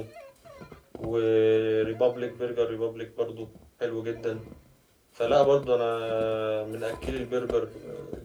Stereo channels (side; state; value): both; identical; correlation 1.00